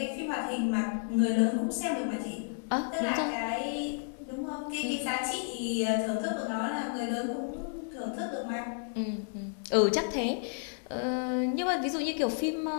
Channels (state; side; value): silent; right; 57 dB below the other